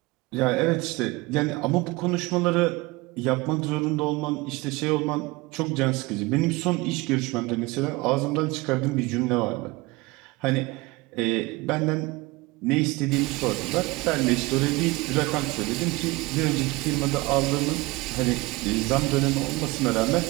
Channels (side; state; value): left; quieter; 22.7 dB